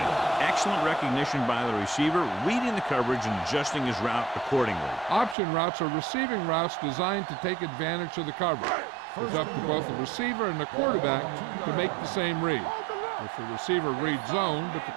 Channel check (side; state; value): left; drops out; at 5.4 s